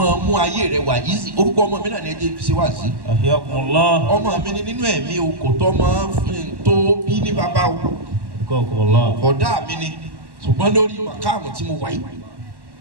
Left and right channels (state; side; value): late; left; 1.1 ms